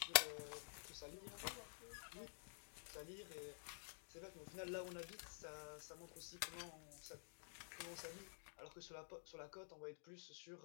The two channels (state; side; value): silent; right; digital silence